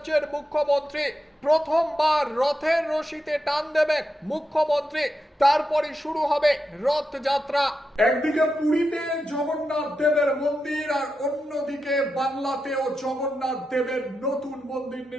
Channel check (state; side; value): normal; both; correlation 0.88